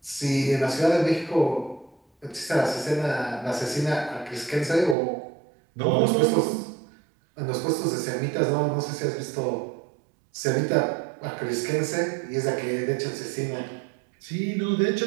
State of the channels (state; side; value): drops out; left; at 5.0 s